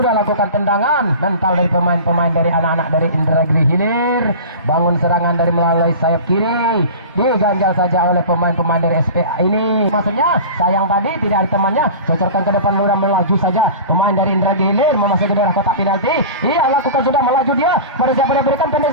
lakukan tendangan mental dari pemain-pemain dari anak-anak dari Indragiri Hilir. Bangun serangan dari melalui sayap kiri, diganjal saja oleh pemain-pemain dari SPA ini. Maksudnya sayang tadi tidak ada temannya, cocorkan ke depan, ludah melaju saja pemain dari Indragiri Hilir memasuki daerah kotak penalti. Iya, lakukan, sudah melaju dia, pada siapa dia berikan,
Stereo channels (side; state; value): both; inverted; correlation -0.35